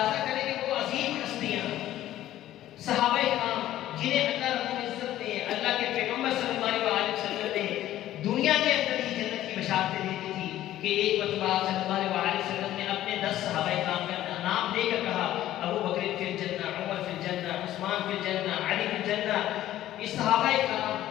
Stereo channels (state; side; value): quieter; right; 13.5 dB